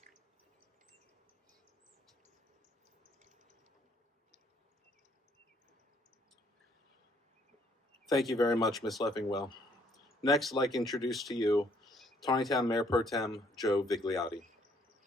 Thank you very much, Ms. Leffingwell. Next, I'd like to introduce to you Taneytown Mayor Pro Tem Joe Vigliotti.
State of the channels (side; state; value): both; normal; correlation 0.65